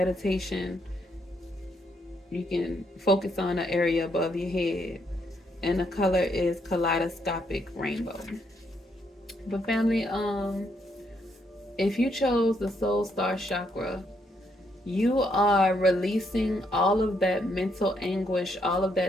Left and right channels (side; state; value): both; normal; correlation 0.74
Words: you can focus on an area above your head. And the color is kaleidoscopic rainbow. But family, if you chose the soul star chakra, you are releasing all of that mental anguish, all of